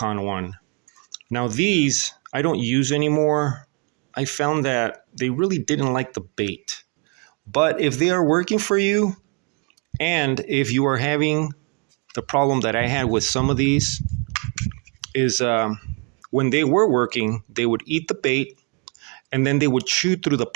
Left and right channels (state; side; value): quieter; left; 31.9 dB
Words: one. Now these I don't use anymore. I found that they really didn't like the bait. But if they are working for you, and if you are having the problem that I had with some of these, is when they were working, they would eat the bait and then they would chew through the